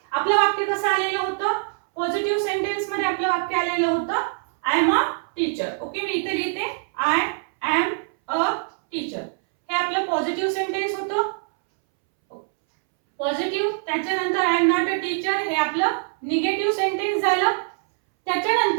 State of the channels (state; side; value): silent; left; 63 dB below the other